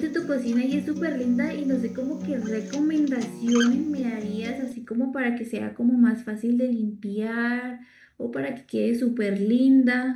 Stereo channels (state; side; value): identical; both; correlation 1.00